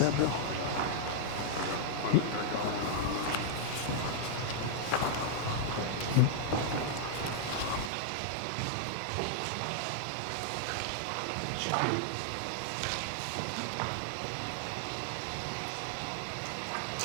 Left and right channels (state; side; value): drops out; left; at 7.9 s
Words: Bill? There you go. Sure.